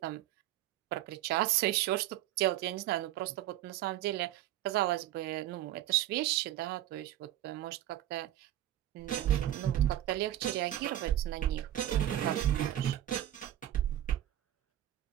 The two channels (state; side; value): quieter; left; 13.0 dB